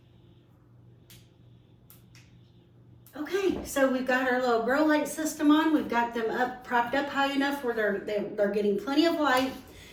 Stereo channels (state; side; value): identical; both; correlation 1.00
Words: Okay, so we've got our little grow light system on. We've got them propped up high enough where they're getting plenty of light.